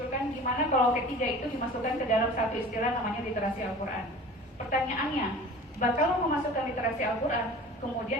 gimana kalau ketiga itu dimasukkan ke dalam satu istilah namanya literasi Al-Quran. Pertanyaannya, kalau memasukkan literasi Al-Quran,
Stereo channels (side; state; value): both; normal; correlation 0.41